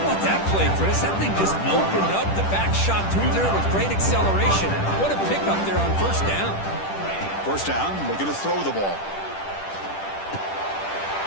that play, Chris? That thing just opened up. The back shot through there with great acceleration. What a pickup there on first down. First down, we're going to throw the ball.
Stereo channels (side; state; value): right; late; 10 ms